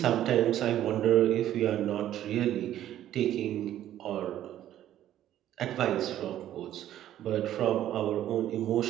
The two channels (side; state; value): left; quieter; 12.1 dB